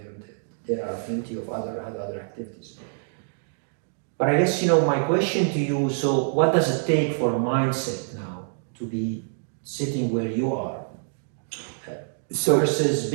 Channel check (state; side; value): silent; left; digital silence